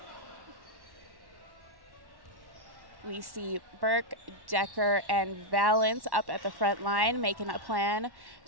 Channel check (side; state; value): left; late; 1.1 ms